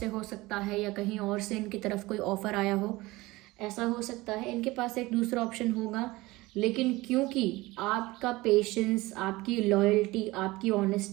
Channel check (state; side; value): quieter; left; 20.4 dB